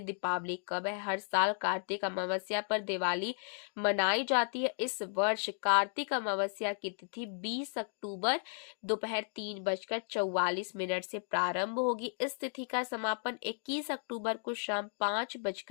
दीपावली कब है। हर साल कार्तिक अमावस्या पर दिवाली मनाई जाती है। इस वर्ष कार्तिक अमावस्या की तिथि 20 अक्टूबर दोपहर 3:44 से प्रारंभ होगी। इस तिथि का समापन 21 अक्टूबर को शाम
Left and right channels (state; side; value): silent; right; 55 dB below the other